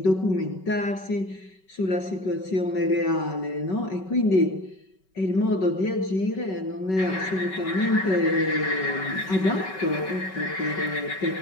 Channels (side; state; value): right; late; 5.3 ms